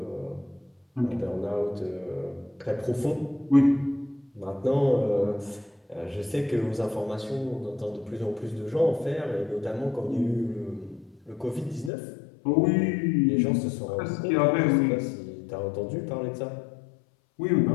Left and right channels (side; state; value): right; drops out; at 11.9 s